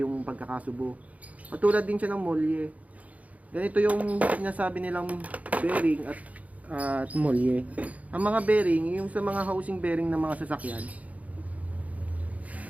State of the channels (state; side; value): late; left; 0.070 ms